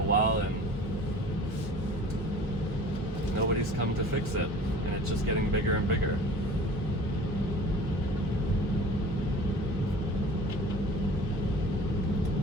while and nobody's come to fix it, and it's just getting bigger and bigger.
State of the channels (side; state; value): both; normal; correlation 0.43